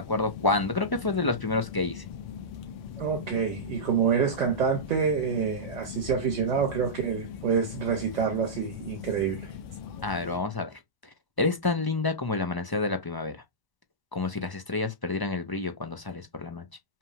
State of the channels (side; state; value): right; late; 1.0 ms